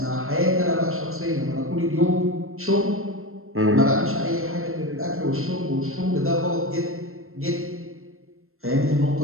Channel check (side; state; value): left; late; 0.62 ms